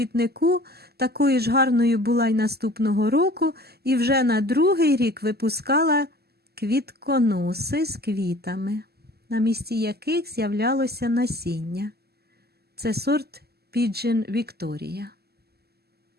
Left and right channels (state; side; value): late; left; 0.46 ms